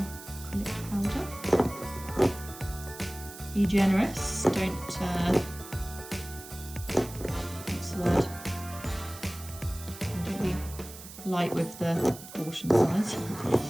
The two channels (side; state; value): right; noise; hiss, 15 dB below the sound